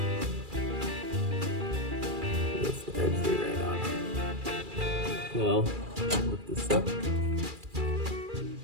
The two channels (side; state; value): left; late; 2.4 ms